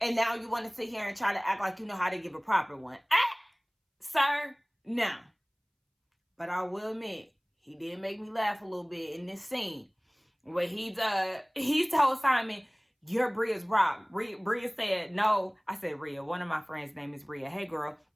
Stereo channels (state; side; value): identical; both; correlation 1.00